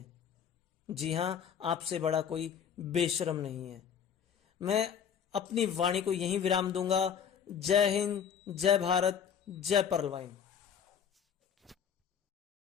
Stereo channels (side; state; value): right; quieter; 7.9 dB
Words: जी हां, आपसे बड़ा कोई बेशरम नहीं है। मैं अपनी वाणी को यहीं विराम दूंगा। जय हिंद, जय भारत, जय पर्लवाइन।